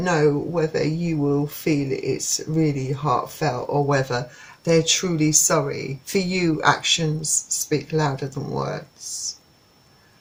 whether you will feel it's really heartfelt or whether they're truly sorry. For you, actions speak louder than words,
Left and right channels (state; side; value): identical; both; correlation 1.00